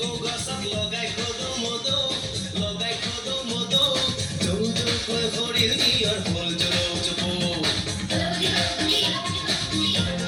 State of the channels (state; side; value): identical; both; correlation 1.00